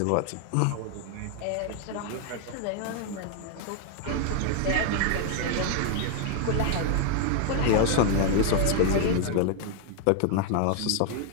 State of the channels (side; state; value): both; different; correlation 0.00